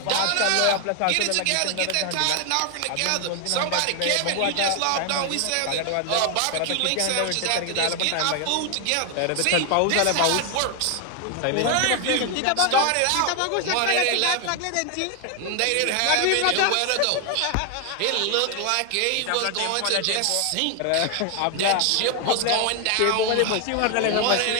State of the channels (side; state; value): both; different; correlation 0.00